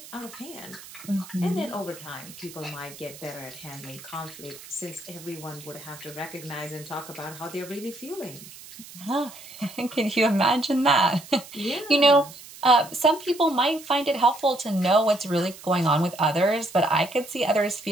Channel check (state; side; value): noise; right; hiss, 17 dB below the sound